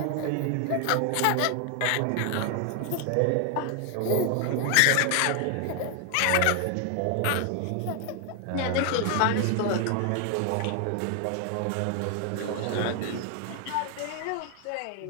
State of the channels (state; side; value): different; both; correlation 0.00